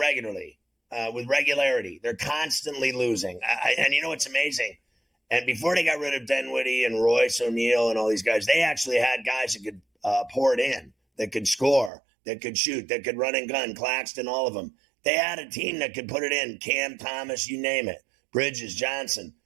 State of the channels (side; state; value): left; drops out; at 11.9 s